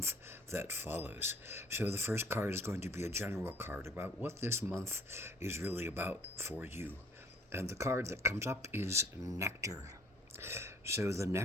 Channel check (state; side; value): normal; both; correlation 0.56